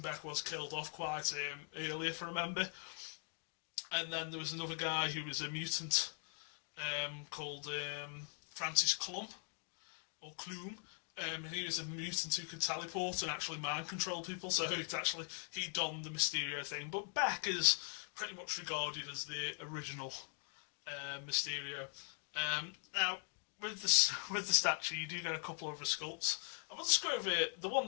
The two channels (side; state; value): right; silent; 50 dB below the other